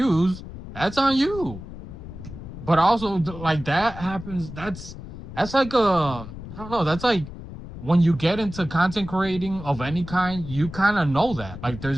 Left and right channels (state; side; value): noise; left; rumble, 12 dB below the sound